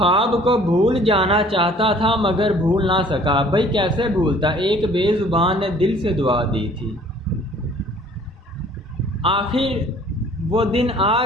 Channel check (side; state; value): both; normal; correlation 0.54